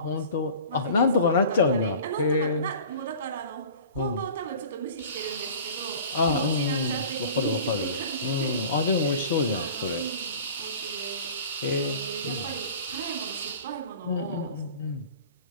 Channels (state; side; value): inverted; both; correlation -0.41